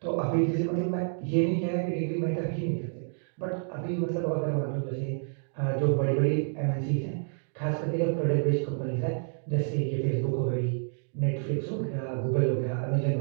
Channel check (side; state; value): left; silent; digital silence